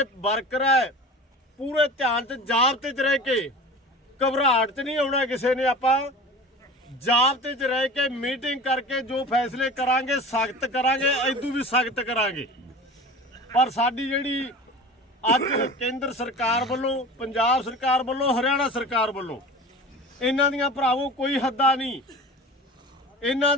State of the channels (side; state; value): both; normal; correlation 0.36